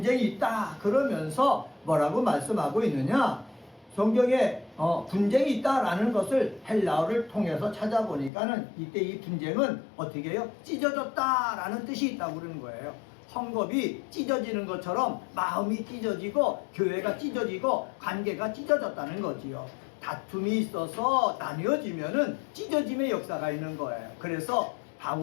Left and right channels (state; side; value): drops out; right; at 8.3 s